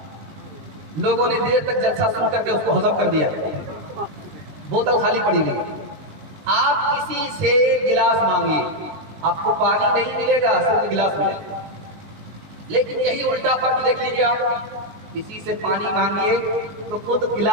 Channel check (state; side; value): late; left; 20 ms